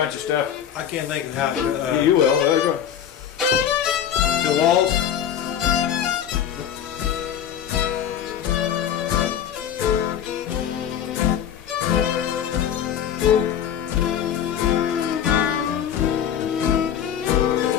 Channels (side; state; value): right; quieter; 9.3 dB